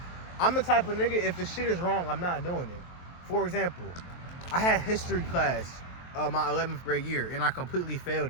I'm the type of nigga, if the shit is wrong, I'm not doing it. For example, I had history class my 11th grade year, and I completely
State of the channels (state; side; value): late; right; 23 ms